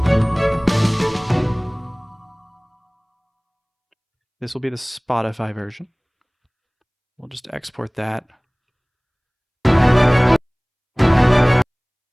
This will be the Spotify version. We'll just export that. Put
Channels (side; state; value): both; identical; correlation 1.00